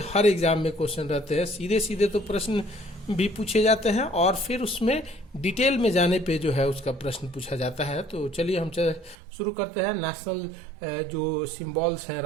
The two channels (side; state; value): left; drops out; at 9.2 s